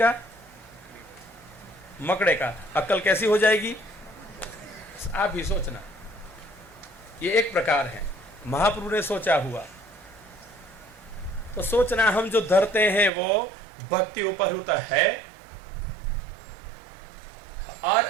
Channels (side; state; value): left; drops out; at 13.1 s